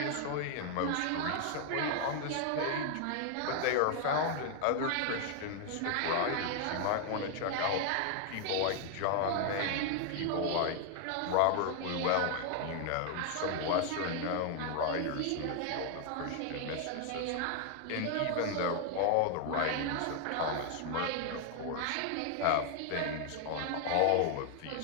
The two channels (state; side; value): different; both; correlation 0.00